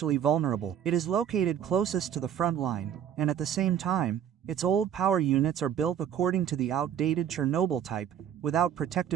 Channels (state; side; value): quieter; left; 9.4 dB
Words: vulnerable. It is located closest to the front line, and at the same time, its old power units are built according to the outdated Chernobyl type, without